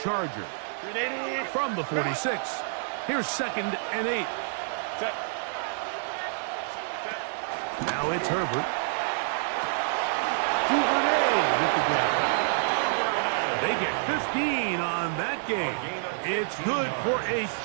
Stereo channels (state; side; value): silent; left; digital silence